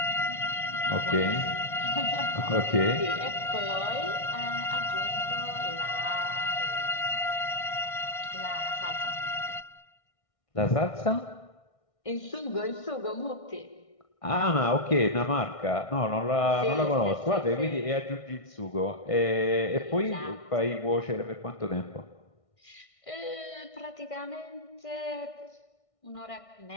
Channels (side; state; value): right; late; 1.6 ms